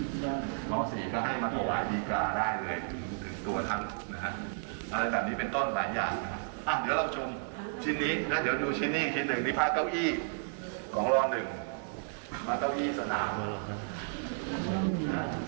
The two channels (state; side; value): silent; left; 56 dB below the other